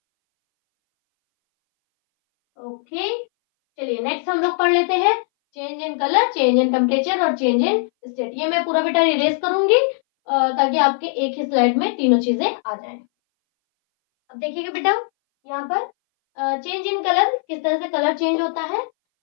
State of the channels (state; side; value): silent; right; 61 dB below the other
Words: Okay, चलिए नेक्स्ट हम लोग पढ़ लेते हैं change in colour, change in temperature और चेंज इन स्टेट। ये मैं पूरा बेटा इरेज करूंगी ताकि आपके एक ही स्लाइड में तीनों चीजें आ जाएं। अब देखिएगा बेटा, यहाँ पर चेंज इन कलर, किस तरह से कलर चेंज होता है।